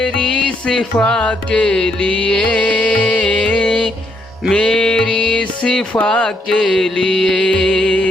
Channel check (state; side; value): normal; both; correlation 0.75